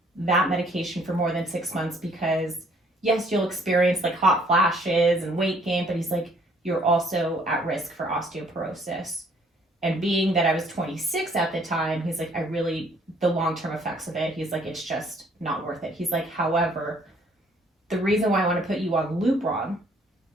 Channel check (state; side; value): normal; both; correlation 0.62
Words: that medication for more than 6 months because yes, you'll experience like hot flashes and weight gain, but he's like, you're also at risk for osteoporosis. And being that I was 26 at the time, he's like, the long-term effects of it, he's like, it's just not worth it. He's like, however, the reason why I want to put you on Lupron